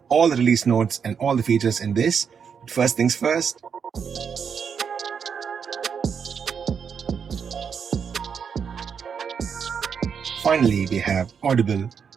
all the release notes and all the features in this. But first things first. Finally, we have Audible, and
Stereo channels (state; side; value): quieter; left; 6.8 dB